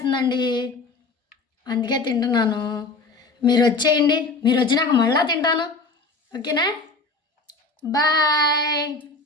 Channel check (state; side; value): quieter; right; 3.8 dB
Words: అందుకే తింటున్నాను. మీరు వచ్చేయండి. మీరు వచ్చినాక మళ్ళీ తింటాను, ఓకేనా? బాయ్.